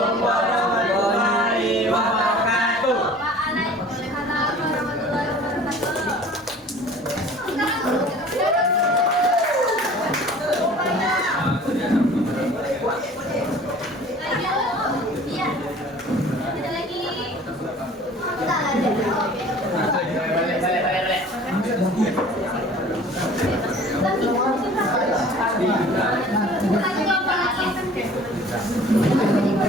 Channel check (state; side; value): normal; both; correlation 0.47